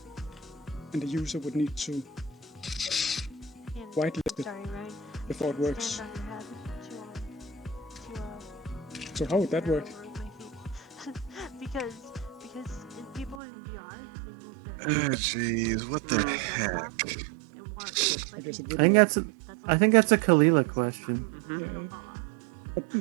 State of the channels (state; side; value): drops out; left; at 13.4 s